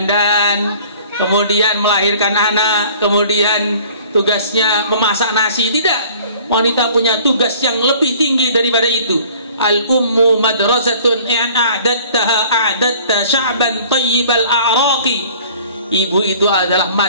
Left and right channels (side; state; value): both; inverted; correlation -0.50